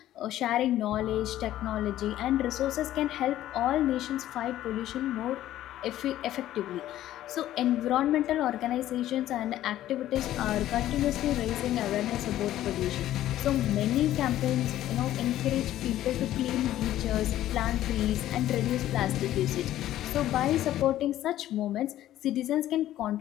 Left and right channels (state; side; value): quieter; right; 13.3 dB